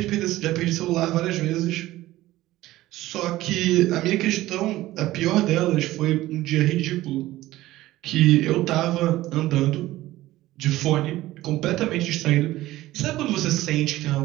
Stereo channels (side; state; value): left; quieter; 16.3 dB